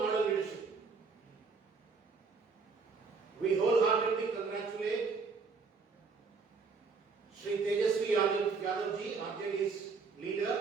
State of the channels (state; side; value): quieter; left; 4.7 dB